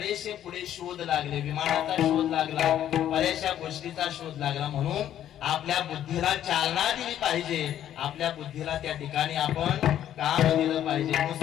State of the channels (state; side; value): quieter; right; 11.1 dB